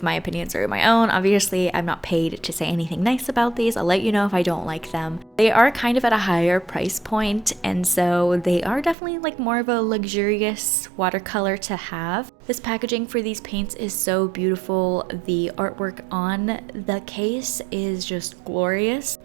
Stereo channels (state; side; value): drops out; left; at 9.0 s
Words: my opinions are my own. Obviously, I'm not paid to say anything nice about these. I'll let you know if I don't like them. They are kind of at a higher price point, and so they are definitely like more of a luxurious watercolor to have. This packaging for these paints is so beautiful. The artwork on the case is just glorious,